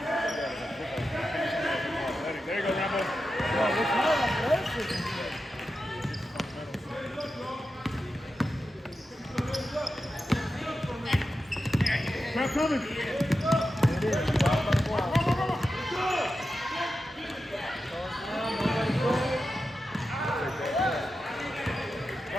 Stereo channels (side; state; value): both; normal; correlation 0.90